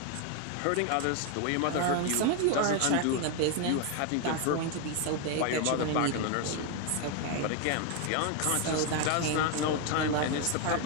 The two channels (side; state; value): both; different; correlation 0.01